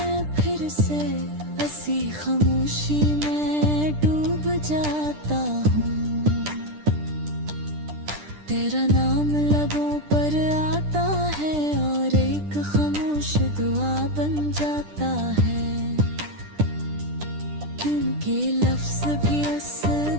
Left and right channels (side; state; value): left; late; 10 ms